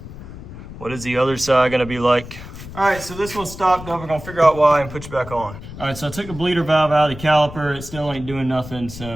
What is the other side gonna be like? All right, so this one stopped up. We're gonna figure out why and put you back on. All right, so I took the bleeder valve out of the caliper. It still ain't doing nothing,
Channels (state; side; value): noise; left; rumble, 13 dB below the sound